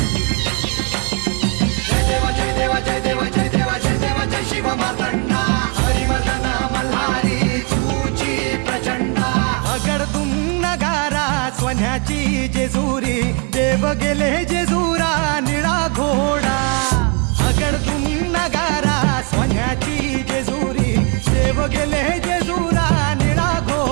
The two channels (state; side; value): quieter; left; 35.4 dB